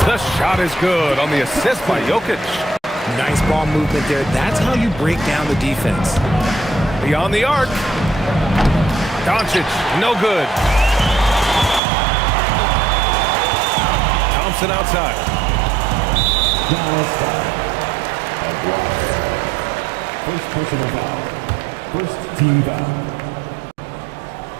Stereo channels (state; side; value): drops out; left; at 11.8 s